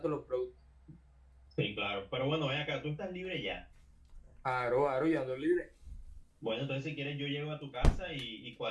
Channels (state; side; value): identical; both; correlation 1.00